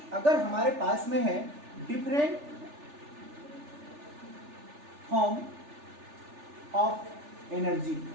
अगर हमारे पास में है डिफरेंट फॉर्म ऑफ एनर्जी,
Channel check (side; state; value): left; late; 3.4 ms